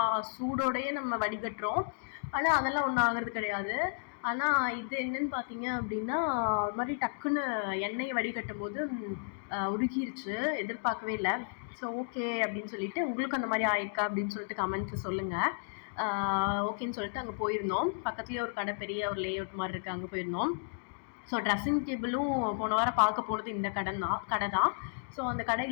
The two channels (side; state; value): right; silent; digital silence